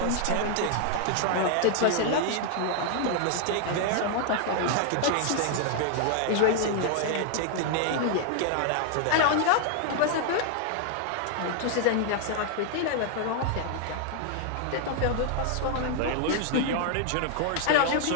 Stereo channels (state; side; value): different; both; correlation 0.00